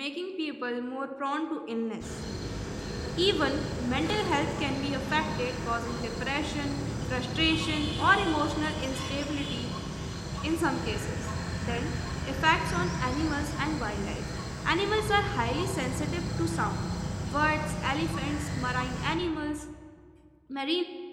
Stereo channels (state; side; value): identical; both; correlation 1.00